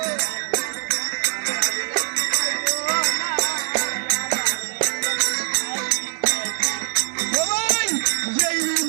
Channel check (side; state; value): left; silent; digital silence